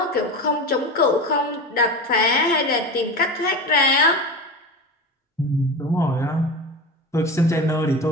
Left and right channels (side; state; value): both; normal; correlation 0.26